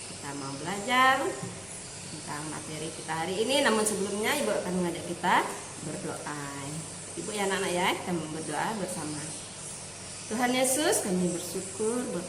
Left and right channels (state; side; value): noise; left; rumble, 25 dB below the sound